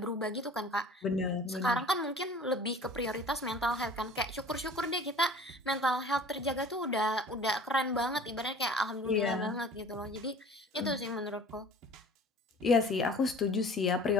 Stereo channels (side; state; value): both; normal; correlation 0.46